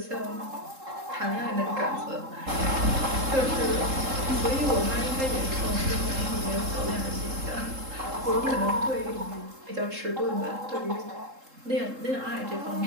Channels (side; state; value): left; late; 3.7 ms